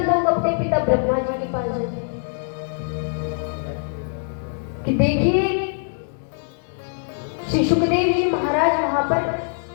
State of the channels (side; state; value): right; silent; digital silence